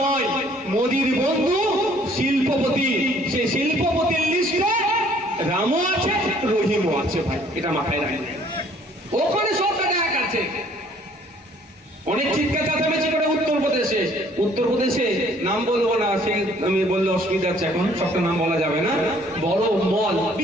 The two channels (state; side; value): normal; both; correlation 0.59